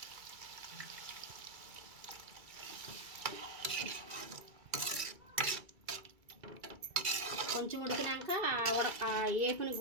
కొంచెం ఉడికినాక ఏపుని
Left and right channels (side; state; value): left; late; 2.3 ms